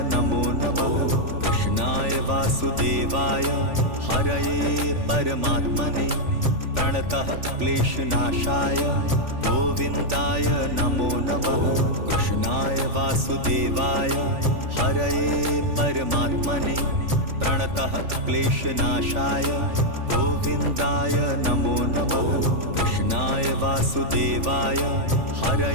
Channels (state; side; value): late; left; 3.4 ms